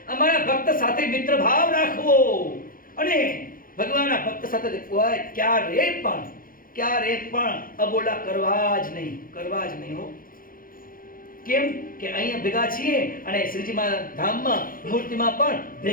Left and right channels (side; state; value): right; late; 0.41 ms